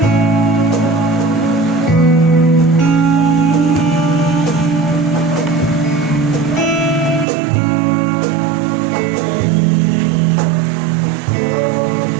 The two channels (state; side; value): drops out; left; at 7.2 s